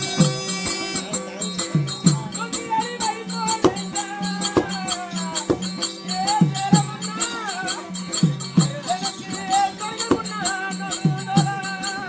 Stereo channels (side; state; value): both; identical; correlation 1.00